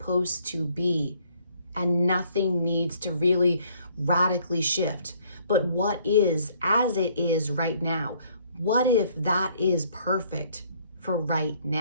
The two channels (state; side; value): inverted; both; correlation -0.62